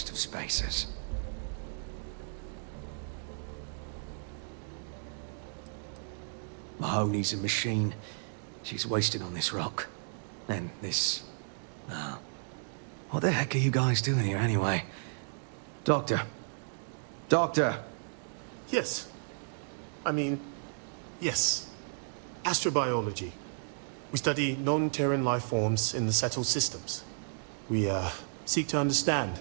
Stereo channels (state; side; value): silent; left; digital silence